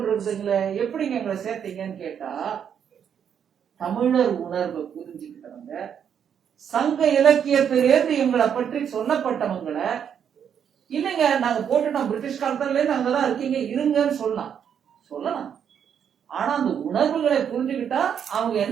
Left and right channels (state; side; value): quieter; left; 8.2 dB